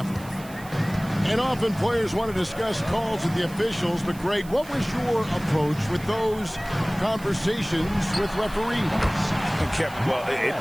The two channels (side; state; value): right; noise; hiss, 20 dB below the sound